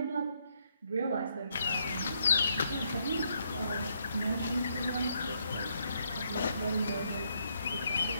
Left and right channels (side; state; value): both; inverted; correlation -0.74